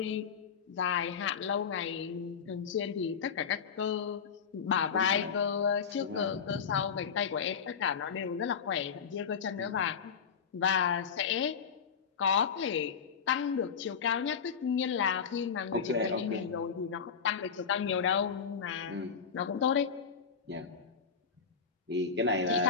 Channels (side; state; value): right; quieter; 6.5 dB